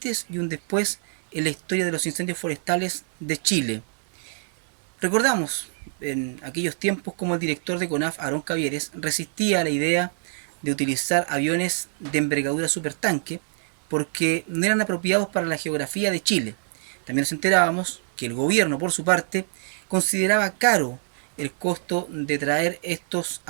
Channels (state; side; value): silent; left; 62 dB below the other